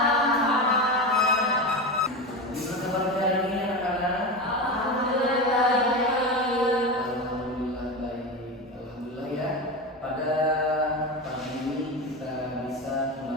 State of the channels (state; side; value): normal; both; correlation 0.22